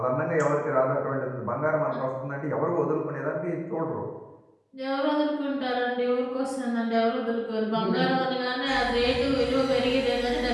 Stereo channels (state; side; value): identical; both; correlation 1.00